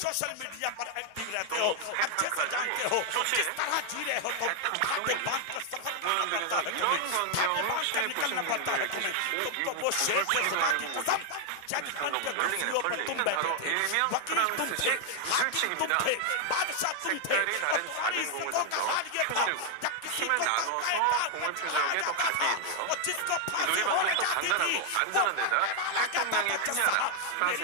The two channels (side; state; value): both; different; correlation 0.00